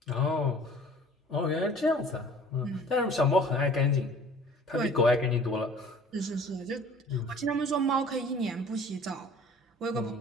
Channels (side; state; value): both; normal; correlation 0.48